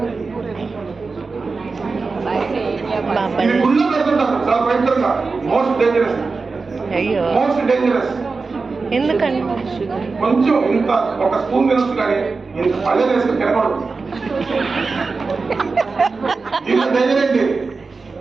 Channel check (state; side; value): quieter; left; 4.3 dB